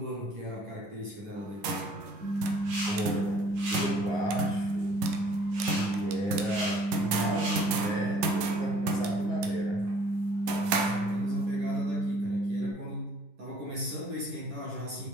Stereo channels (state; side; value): late; left; 11 ms